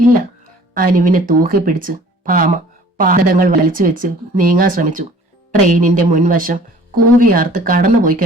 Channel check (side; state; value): both; normal; correlation 0.50